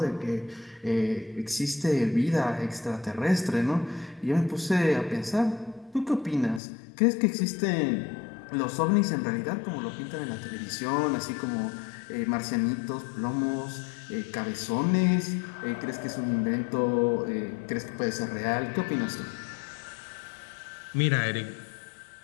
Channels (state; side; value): drops out; right; at 6.6 s